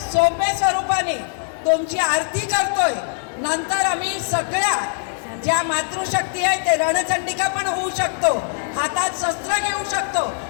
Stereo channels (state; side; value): silent; right; 63 dB below the other